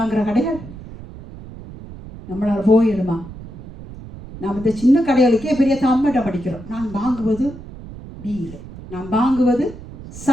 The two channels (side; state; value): right; noise; rumble, 15 dB below the sound